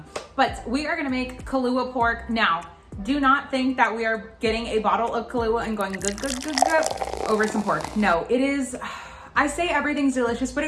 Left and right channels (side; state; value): both; identical; correlation 1.00